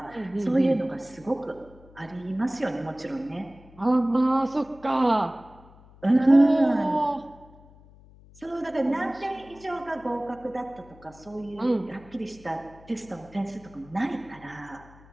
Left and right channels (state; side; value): noise; left; hum, 23 dB below the sound